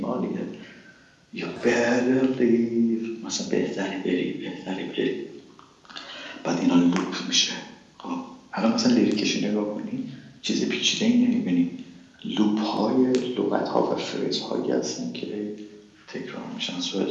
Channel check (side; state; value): both; identical; correlation 1.00